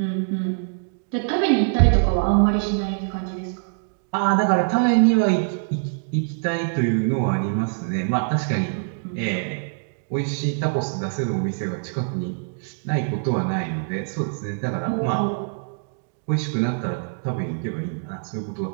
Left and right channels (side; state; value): left; silent; digital silence